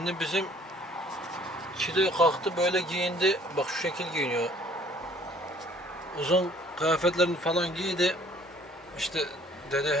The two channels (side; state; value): both; normal; correlation 0.57